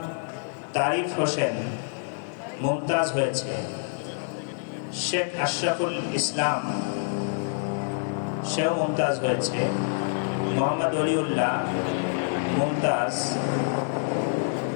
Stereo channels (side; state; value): right; silent; digital silence